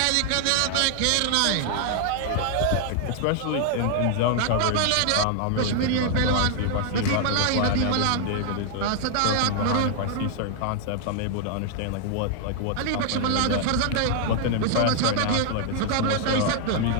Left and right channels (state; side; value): different; both; correlation 0.00